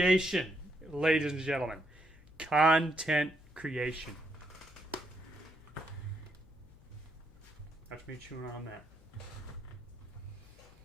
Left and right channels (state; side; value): noise; left; hum, 24 dB below the sound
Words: ladies and gentlemen. Content creation. That's me chewing on that.